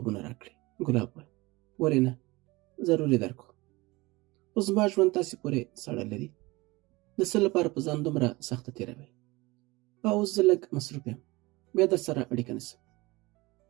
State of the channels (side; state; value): left; quieter; 22.3 dB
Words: راکړې ګلاب وویل ولې نه ضرور یې درکړو خو زما ژوند تاسې پورې څاړه لري د څه لپاره په ځان دومره سخته تېروئ او اوس زه لږ مصروف یم بیا در سره اړیکه نیسم